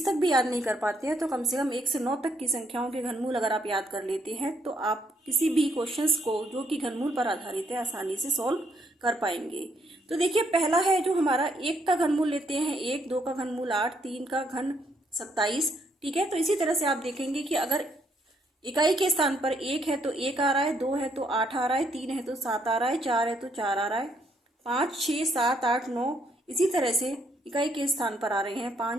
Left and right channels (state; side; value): normal; both; correlation 0.72